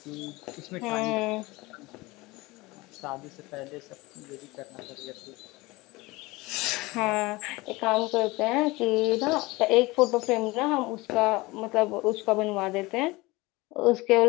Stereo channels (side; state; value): right; quieter; 22.1 dB